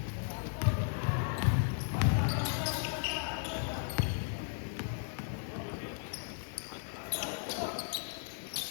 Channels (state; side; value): silent; right; digital silence